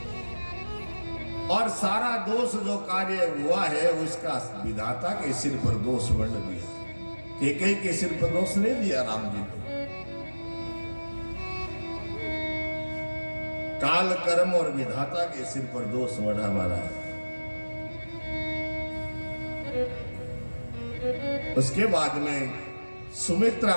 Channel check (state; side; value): inverted; both; correlation -1.00